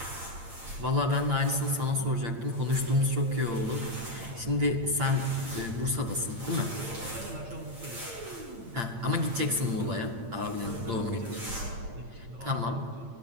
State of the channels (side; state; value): left; late; 8.8 ms